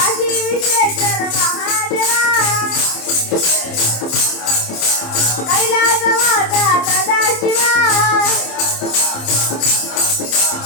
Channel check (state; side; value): late; right; 27 ms